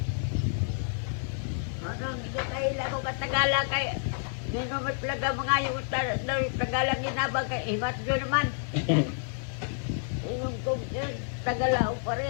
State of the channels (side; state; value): right; silent; 58 dB below the other